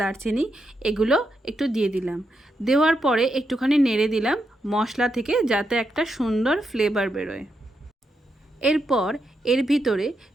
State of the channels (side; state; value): both; normal; correlation 0.83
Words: দারচিনি এগুলো একটু দিয়ে দিলাম। দেওয়ার পরে একটুখানি নেড়ে দিলাম মশলা থেকে, যাতে একটা সুন্দর ফ্লেভার বেরোয়। এরপর এর ভিতরে